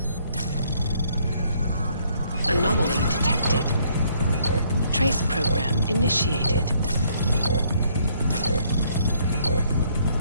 Anomaly detected. Trace program initiated.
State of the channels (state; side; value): inverted; both; correlation -0.67